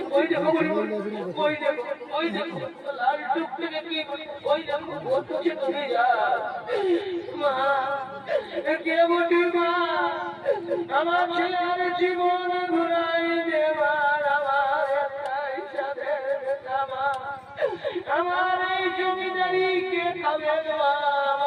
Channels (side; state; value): both; identical; correlation 1.00